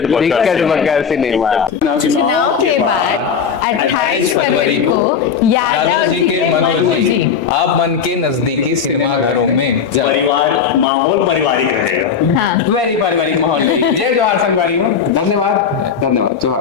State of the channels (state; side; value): quieter; right; 6.8 dB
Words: बक्कर सिनेमा। चुनाव के बाद 28 फरवरी को यादव जी के मनोजी आप मन के नजदीकी सिनेमा घरों में परिवार माहौल पारिवारिक रहेगा। हाँ वेरी पारिवारिक माहौल। जय जोहार संगवारी हो, धन्यवाद धन्यवाद,